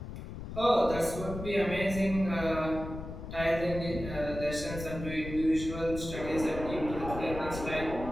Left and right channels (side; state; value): left; noise; rumble, 9 dB below the sound